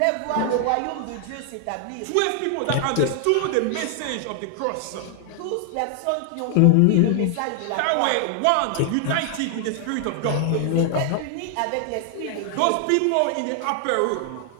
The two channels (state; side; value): different; both; correlation 0.00